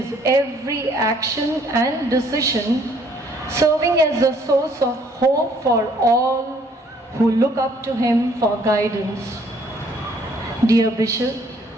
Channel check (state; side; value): normal; both; correlation 0.62